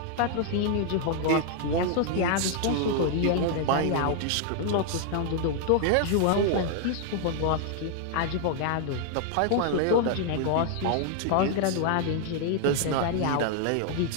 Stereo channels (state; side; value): different; both; correlation 0.00